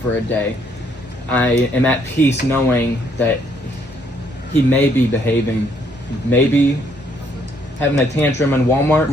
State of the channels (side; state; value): both; normal; correlation 0.69